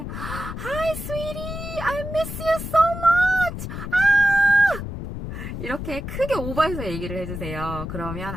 sweetie, I miss you so much. 이렇게 크게 오버해서 얘기를 해주세요. 그러면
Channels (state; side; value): noise; left; rumble, 7 dB below the sound